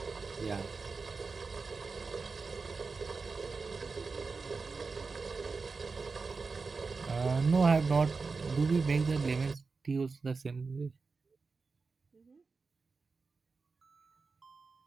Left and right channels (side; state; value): left; quieter; 4.4 dB